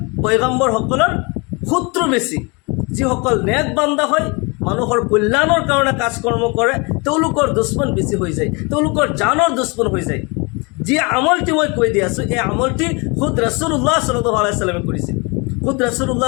পয়গম্বৰসকলৰ শত্ৰু বেছি। যিসকল নেক বান্দা হয়, মানুহৰ কল্যাণৰ কাৰণে কাজ কৰ্ম কৰে, তেওঁলোকৰ দুশ্মন বেছি হৈ যায়, তেওঁলোকৰ জানৰ দুশ্মন হৈ যায়। যি আমলটি মই কৈ দি আছোঁ, এই আমলটি খুদ ৰাছুলুল্লাহ সাল্লাল্লাহু আলাইহি ওয়াসাল্লামে কৰিছিল। খুদ ৰাছুলুল্লাহ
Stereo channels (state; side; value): quieter; right; 29.5 dB